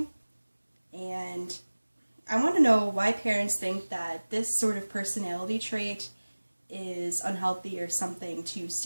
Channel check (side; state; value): both; inverted; correlation -1.00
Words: And I want to know why parents think that this sort of personality trait is unhealthy or something to